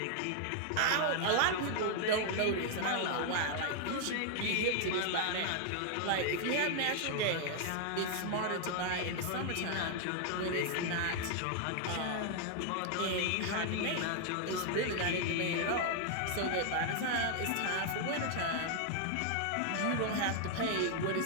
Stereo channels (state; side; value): different; both; correlation 0.00